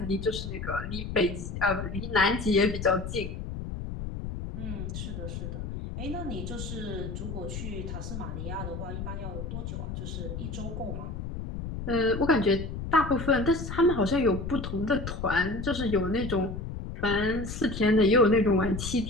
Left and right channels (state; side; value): noise; left; rumble, 6 dB below the sound